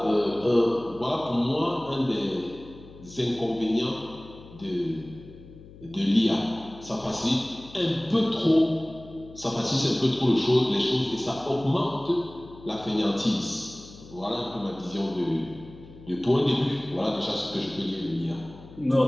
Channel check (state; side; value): noise; left; hum, 19 dB below the sound